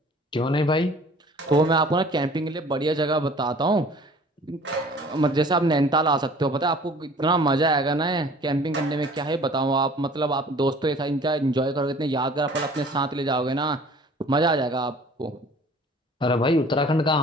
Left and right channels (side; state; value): both; normal; correlation 0.49